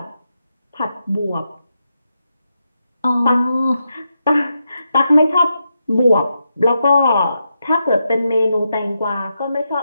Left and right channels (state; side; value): inverted; both; correlation -0.85